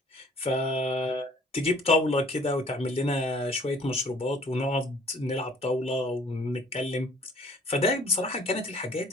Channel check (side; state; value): both; normal; correlation 0.56